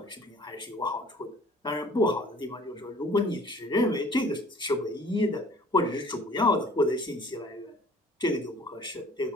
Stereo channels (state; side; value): normal; both; correlation 0.52